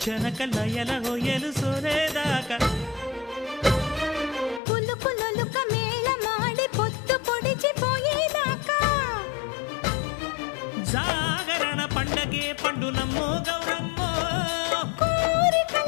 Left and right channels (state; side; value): drops out; right; at 4.6 s